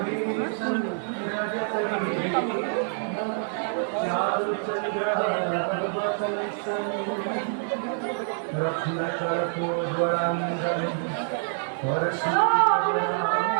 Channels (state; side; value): silent; left; digital silence